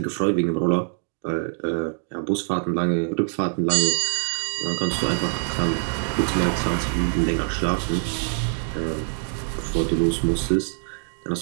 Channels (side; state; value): left; silent; digital silence